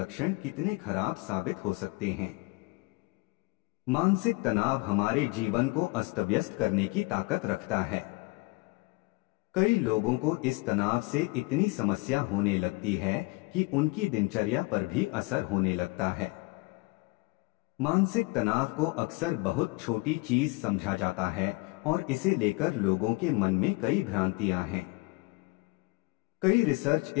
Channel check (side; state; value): right; quieter; 25.2 dB